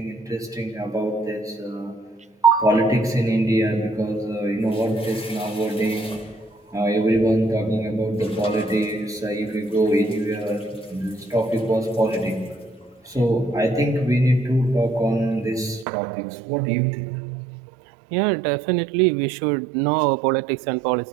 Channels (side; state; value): left; drops out; at 15.9 s